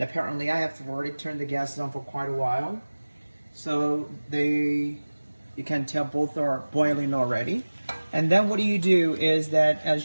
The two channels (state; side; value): inverted; both; correlation -1.00